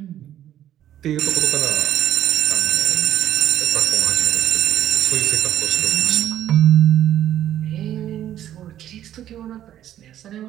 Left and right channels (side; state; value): left; quieter; 11.7 dB